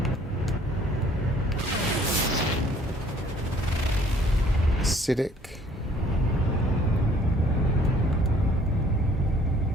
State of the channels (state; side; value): normal; both; correlation 0.58